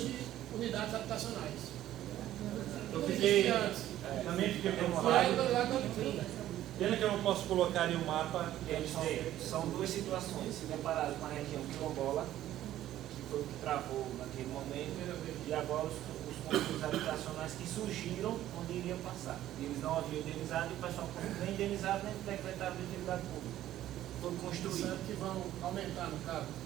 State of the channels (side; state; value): left; quieter; 13.1 dB